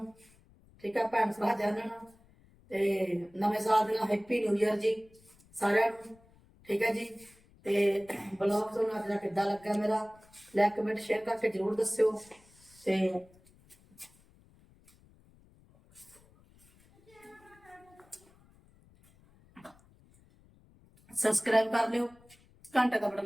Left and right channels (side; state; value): left; noise; rumble, 28 dB below the sound